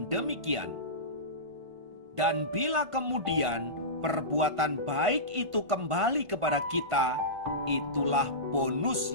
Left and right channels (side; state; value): left; late; 1.5 ms